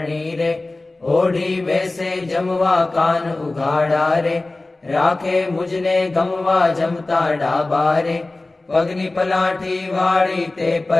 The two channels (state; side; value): quieter; right; 3.0 dB